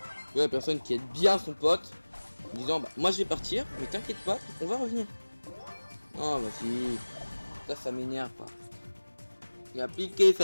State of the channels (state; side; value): inverted; both; correlation -1.00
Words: La personne qui aide bien son pote. En disant, bah, moi je vais partir, mais t'inquiète pas, on va revenir. Oh, vas-y. Ça m'énerve pas. Il a appliqué